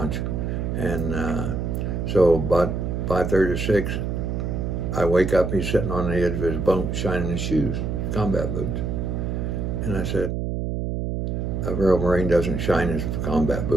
and so about 5:30 or 6, I wake up, he's sitting on the edge of his bunk shining his shoes, combat boots. And I said, a real Marine doesn't shine his combat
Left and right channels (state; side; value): noise; right; hum, 2 dB below the sound